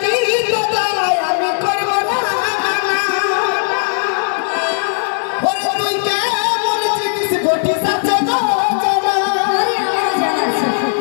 কোথায়? আমি করবো না। ওরে তুই কেমন জিনিস ঘটিস আছে গো জানা। আরে আমারও জানা আছে।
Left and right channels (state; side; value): silent; right; digital silence